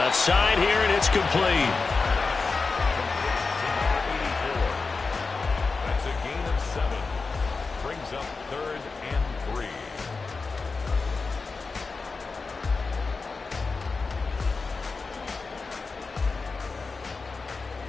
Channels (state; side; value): quieter; right; 4.3 dB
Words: side here, and it's complete. That's a gain of 7. Brings up 3rd and 3.